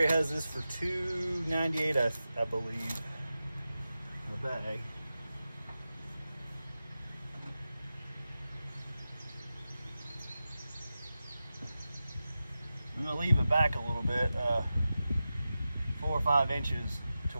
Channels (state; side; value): inverted; both; correlation -0.93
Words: has this for $2.98, I believe, in a bag. I'm gonna leave it back a little bit, 4 or 5 inches, to